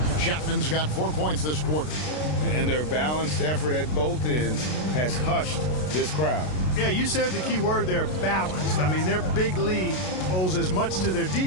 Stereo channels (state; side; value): late; right; 33 ms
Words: Chapman's got 4 points this quarter. And their balanced effort at both ends has hushed this crowd. Yeah, you said the key word there, balanced. I mean, their big lead owes as much to their